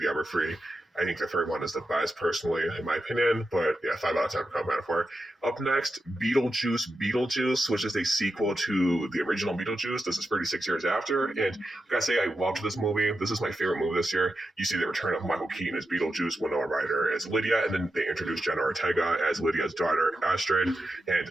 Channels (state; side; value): normal; both; correlation 0.89